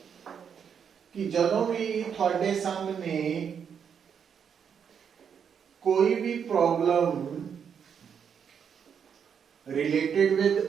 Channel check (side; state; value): left; quieter; 7.4 dB